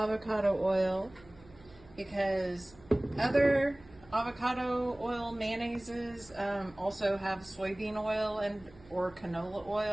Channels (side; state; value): right; noise; hum, 24 dB below the sound